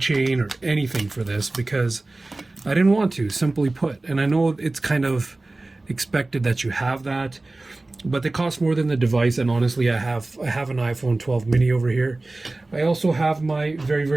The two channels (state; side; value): quieter; left; 3.0 dB